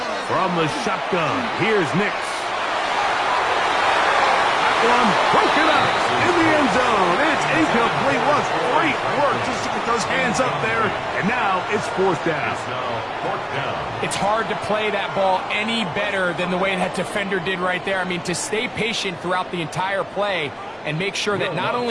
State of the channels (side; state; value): both; identical; correlation 1.00